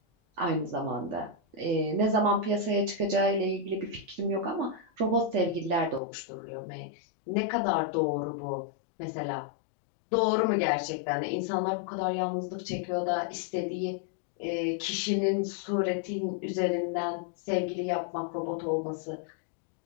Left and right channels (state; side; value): drops out; right; at 6.0 s